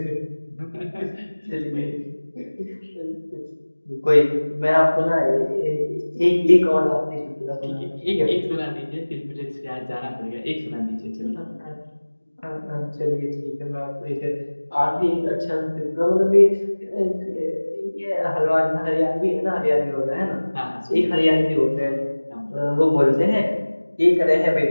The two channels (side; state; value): both; inverted; correlation -1.00